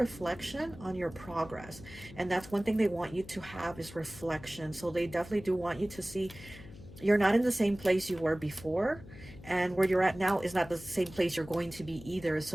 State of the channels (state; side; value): noise; left; hum, 17 dB below the sound